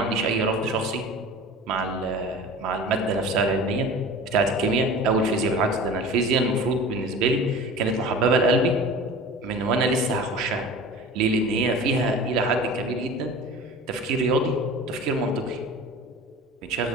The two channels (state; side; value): normal; both; correlation 0.38